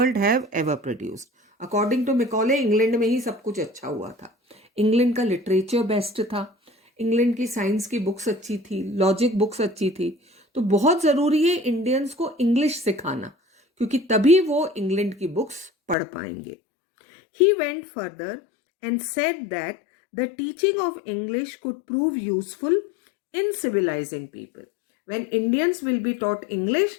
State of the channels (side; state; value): right; drops out; at 16.0 s